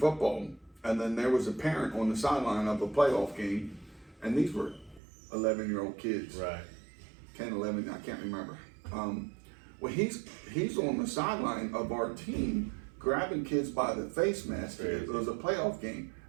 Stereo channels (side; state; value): left; drops out; at 5.0 s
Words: and then there was a parent on the sideline of a playoff game, and these were 11-year-old kids. Right. 10, 11, I can't remember. Well, he's on the sideline of our team, grabbing kids by the face mask. Crazy. It was a playoff game,